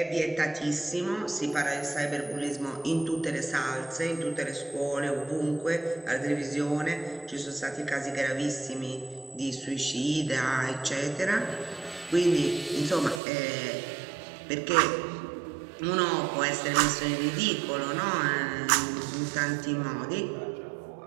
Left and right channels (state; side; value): drops out; left; at 13.2 s